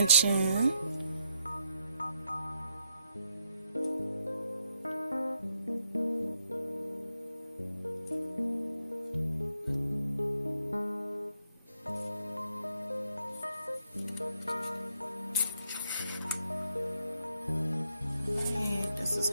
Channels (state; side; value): inverted; both; correlation -0.78